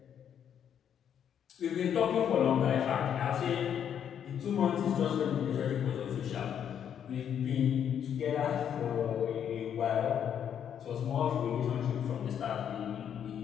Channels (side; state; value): right; quieter; 8.8 dB